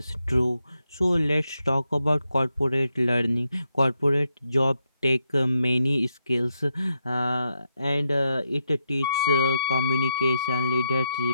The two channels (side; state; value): both; inverted; correlation -0.83